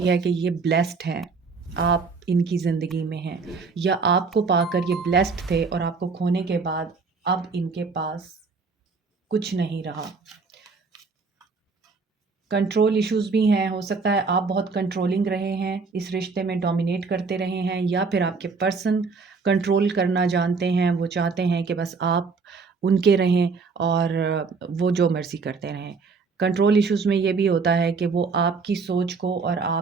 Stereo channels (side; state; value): left; quieter; 4.7 dB